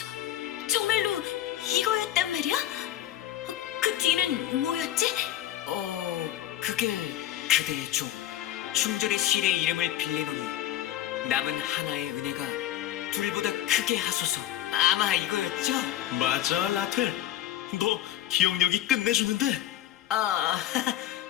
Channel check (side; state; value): right; quieter; 12.8 dB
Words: 정말로 이거였단 말이야? 그 뒤는 뭐였지? 그게 그대의 종 충절의 실의 이름을 빌리노니 남은 하나의 은혜가 둘보다 크게 하소서. 아마 이거였죠? 맞아, 라텔. 너 기억력이 끝내주는데?